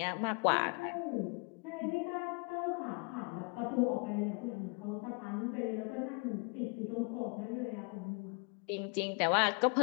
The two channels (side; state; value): right; quieter; 33.5 dB